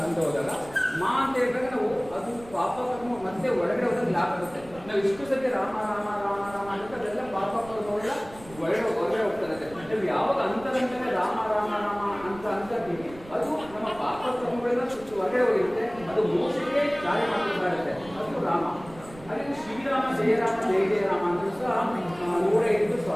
ಅಂತ ಹೋದಾಗ ಮಾ ಅಂತ ಹೇಳಿದಾಗ ನಾವು ಅದು ಪಾಪ ಕರ್ಮ ಮತ್ತೆ ಒಳಗಡೆ ಹೋದಾಗ ಲಾಭ ಆಗುತ್ತೆ. ನಾವು ಇಷ್ಟು ಸತಿ ರಾಮ ರಾಮ ರಾಮ ರಾಮ ಅಂತ ಅದೆಲ್ಲ ಪಾಪ ಕರ್ಮಗಳೆಲ್ಲ ಹೊರಗಡೆ ಹೋಗ್ತದೆ. ನಾವು ಯಾವಾಗ ಅಂತರಂತನೇ ರಾಮ ರಾಮ ರಾಮ ಅಂತ ಅಂತೀವಿ ಅದು ನಮ್ಮ ಪಾಪ ಕರ್ಮಗಳೆಲ್ಲ ಹೊರಗಡೆ ಹೋಗಿರುತ್ತೆ. ಅದು ಮೋಸಕ್ಕೆ ಕಾರ್ಯ ಮಾಡ್ಬೇಕಾಗುತ್ತೆ. ಅದು ರಾಮ. ಅದೇ ಶ್ರೀರಾಮ ಜಯರಾಮ ಜಯ ಜಯರಾಮ ಅಂತ ಸಹ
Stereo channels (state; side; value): noise; right; rumble, 19 dB below the sound